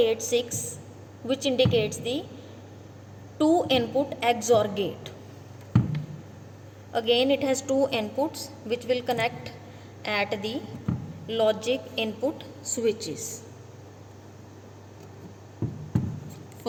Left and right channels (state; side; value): identical; both; correlation 1.00